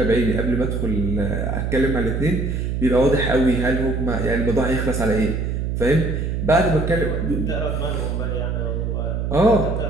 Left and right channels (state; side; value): noise; right; hum, 1 dB below the sound